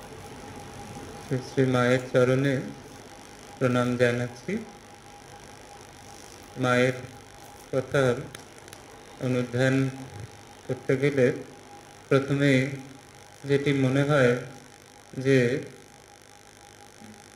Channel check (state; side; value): identical; both; correlation 1.00